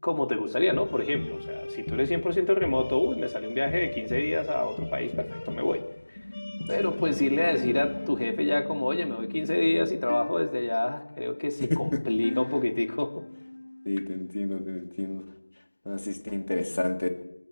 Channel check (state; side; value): inverted; both; correlation -1.00